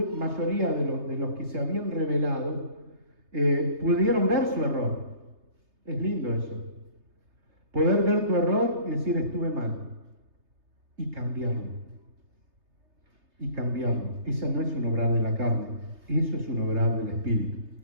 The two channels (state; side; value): late; left; 3.3 ms